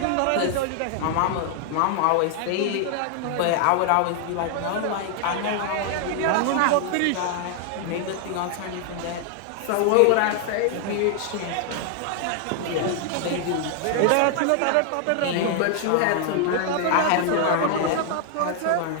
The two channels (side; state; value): both; different; correlation 0.00